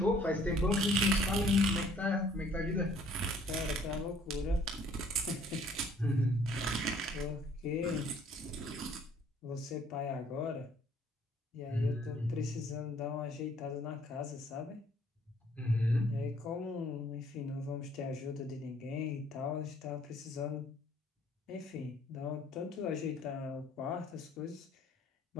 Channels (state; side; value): normal; both; correlation 0.59